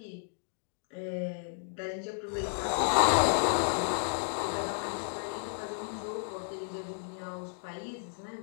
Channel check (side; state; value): right; silent; digital silence